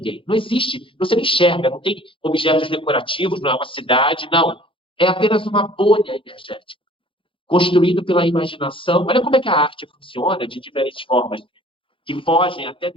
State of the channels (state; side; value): late; right; 0.25 ms